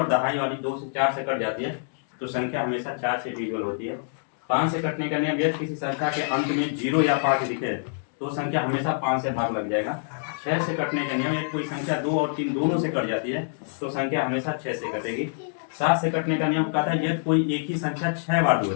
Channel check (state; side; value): silent; right; digital silence